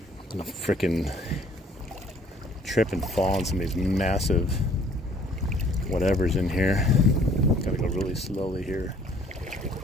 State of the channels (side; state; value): both; normal; correlation 0.57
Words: gonna frickin' trip and fall on some of these massive whatever's in here. Gotta go really slowly here.